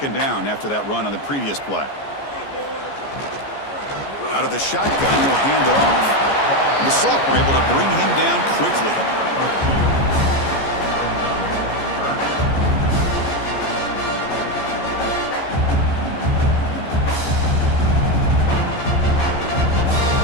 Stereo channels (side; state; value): right; late; 14 ms